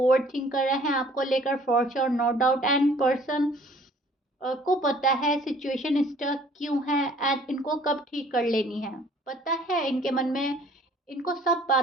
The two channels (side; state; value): both; normal; correlation 0.55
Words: overthink कर रहे हैं आपको लेकर for sure, no doubt. And person को पता है सिचुएशन स्टक क्यों है एंड इनको कब ठीक कर लेनी है, पता है इनके मन में। इनको सब